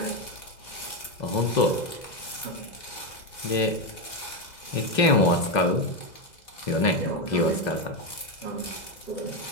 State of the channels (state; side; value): late; right; 2.0 ms